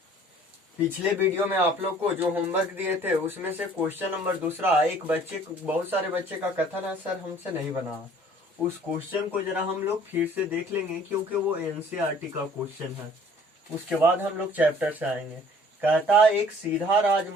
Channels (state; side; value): normal; both; correlation 0.54